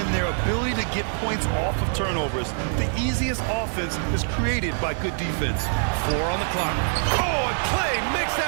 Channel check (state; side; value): silent; left; digital silence